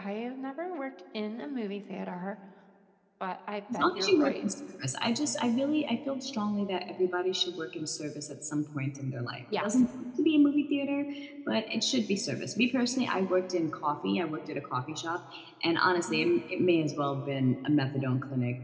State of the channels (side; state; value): both; identical; correlation 1.00